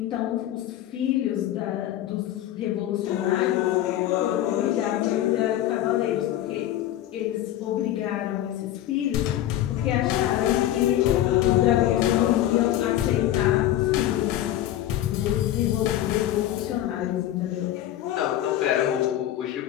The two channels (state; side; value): quieter; right; 13.0 dB